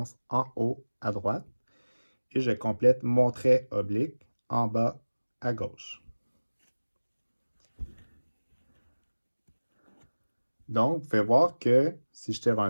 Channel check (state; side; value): inverted; both; correlation -1.00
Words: en haut à droite et je complète mon trait oblique en bas à gauche. Donc, vous pouvez voir que, si je tire un